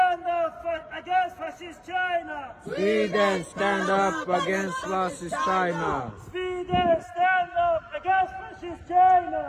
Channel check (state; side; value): identical; both; correlation 1.00